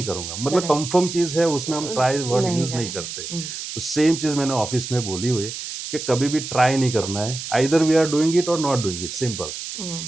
करूँगा। मतलब करेक्ट, कन्फर्म चीज़ है, उसमें हम ट्राई वर्ड नहीं यूज़ नहीं करें। करते। तो सेम चीज़ मैंने ऑफ़िस में बोली हुई है कि कभी भी ट्राई नहीं करना है। Either we are doing it और नॉट डूइंग इट, सिंपल।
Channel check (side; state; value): right; noise; hiss, 8 dB below the sound